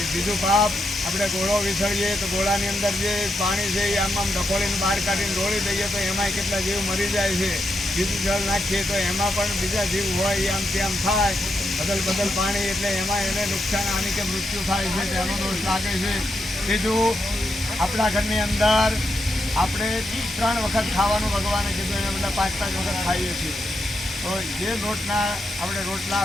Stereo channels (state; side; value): normal; both; correlation 0.83